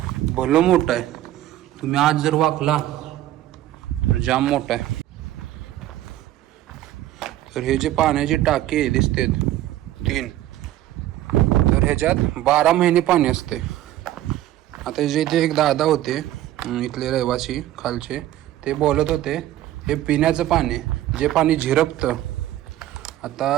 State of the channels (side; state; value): left; quieter; 13.8 dB